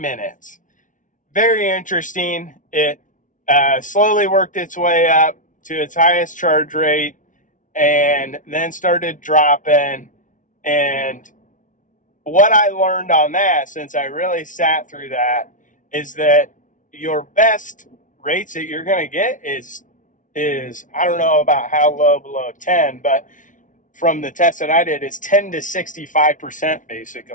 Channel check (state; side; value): late; right; 0.37 ms